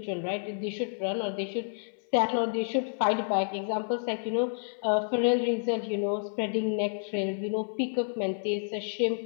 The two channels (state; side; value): silent; right; 58 dB below the other